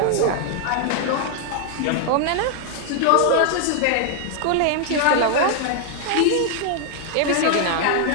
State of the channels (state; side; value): different; both; correlation 0.00